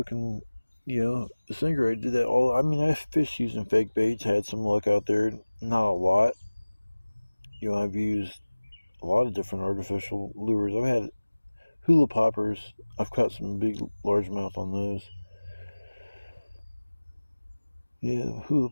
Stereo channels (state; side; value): inverted; both; correlation -1.00